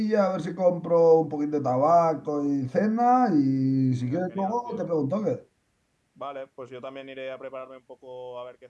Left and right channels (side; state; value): both; identical; correlation 1.00